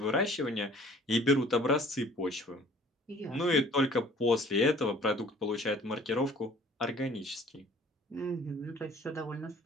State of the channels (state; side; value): normal; both; correlation 0.53